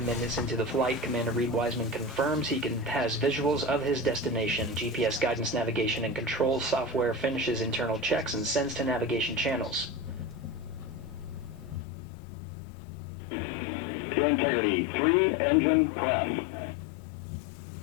into the flight, Commander Reed Wiseman confirms he has visuals of his destination. GPS guidance, navigation, and control software finishes internal checks and sends to navigation channels. Integrity, 3 engine press.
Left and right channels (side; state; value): right; drops out; at 11.9 s